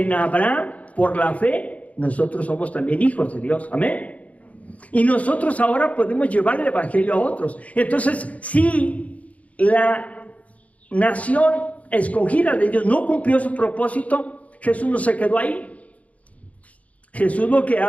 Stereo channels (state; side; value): late; right; 0.068 ms